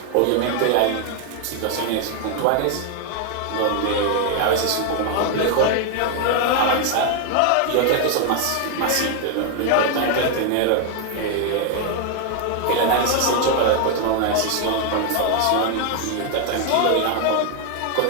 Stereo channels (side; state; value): both; different; correlation 0.00